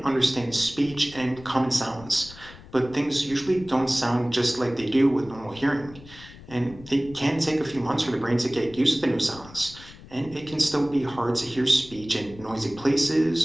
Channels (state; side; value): noise; left; rumble, 19 dB below the sound